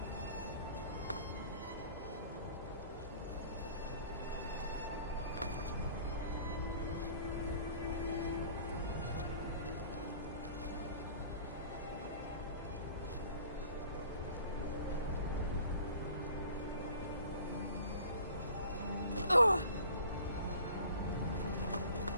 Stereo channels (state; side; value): inverted; both; correlation -0.48